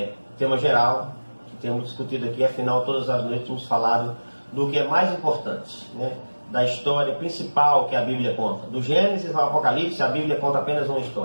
tema geral, que temos discutido aqui. Afinal, todas as noites temos falado do que é mais importante, né? Da história principal que a Bíblia conta. Do Gênesis ao Apocalipse, a Bíblia conta apenas uma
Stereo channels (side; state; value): both; inverted; correlation -1.00